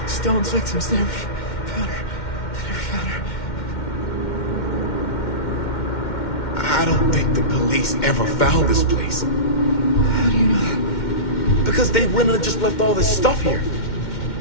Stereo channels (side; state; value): right; late; 2.1 ms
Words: Stone's victims. They never found her. They never found her. I don't think the police ever found this place. How do you know that? Because they went and just left all this stuff here.